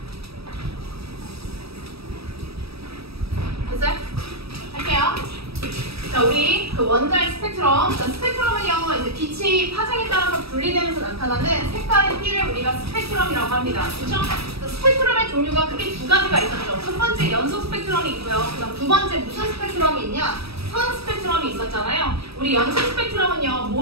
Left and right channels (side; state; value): left; late; 0.78 ms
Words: 됐어요? 할게요. 자, 우리 그 원자의 스펙트럼. 자, 스펙트럼은요, 이제 빛이 파장에 따라서 분리되면서 나타나는 색깔의 띠를 우리가 스펙트럼이라고 합니다. 그렇죠? 스펙트럼의 종류가 크게 두 가지가 있었죠. 첫 번째 연속 스펙트럼이 있고요. 그다음 두 번째 무슨 스펙트럼이 있냐? 선 스펙트럼이 있었잖아요. 우리 연속 스펙트럼은요,